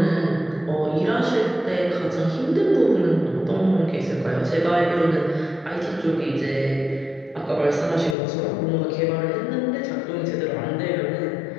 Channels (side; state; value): right; drops out; at 8.2 s